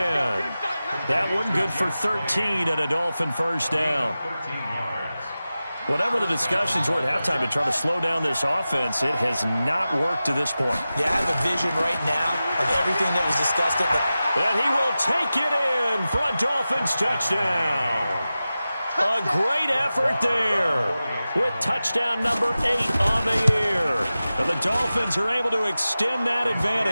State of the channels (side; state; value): both; inverted; correlation -0.95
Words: That one good for 13 and a Dolphin first down. Whatever the discussions were at halftime to try to slow down this offense, it has not worked to this point. Yeah, I have a vision right now of everything that was discussed. And he will take it in for a Dolphins touchdown. A great effort there with touchdown number 8 on the year. And the Dolphins are able to extend that